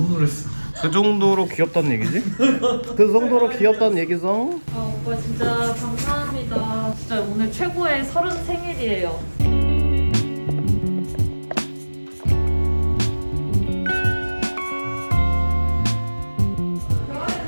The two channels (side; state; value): both; inverted; correlation -1.00